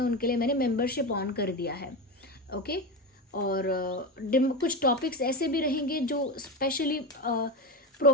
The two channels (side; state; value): both; normal; correlation 0.18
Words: उनके लिए मैंने मेंबरशिप ऑन कर दिया है। ओके, और कुछ टॉपिक्स ऐसे भी रहेंगे जो स्पेशली